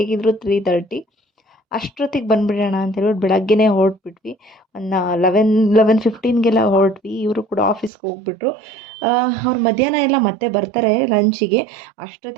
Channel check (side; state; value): left; drops out; at 7.9 s